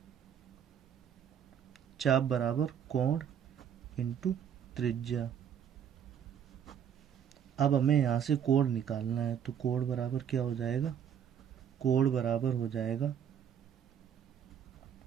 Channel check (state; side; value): quieter; left; 8.5 dB